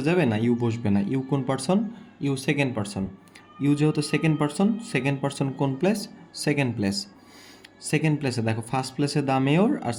যাবে না, ইউ বসবে না। ইউ কোন person, you second person. You যেহেতু সেকেন্ড পারসন কোন প্লেস, সেকেন্ড প্লেস। সেকেন্ড প্লেসে দেখো ফার্স্ট প্লেসে দ্য মেয়র আর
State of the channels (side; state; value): both; identical; correlation 1.00